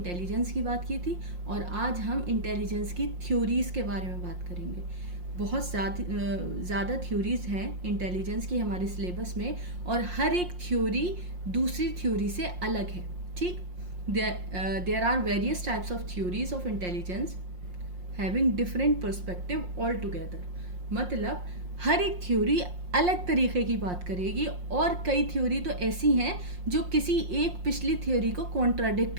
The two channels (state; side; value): late; left; 5.6 ms